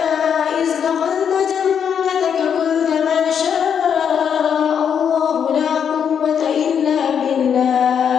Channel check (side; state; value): right; quieter; 7.7 dB